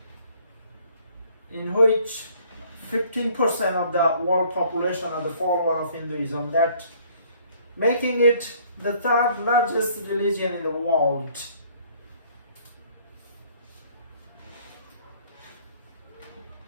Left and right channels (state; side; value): inverted; both; correlation -0.59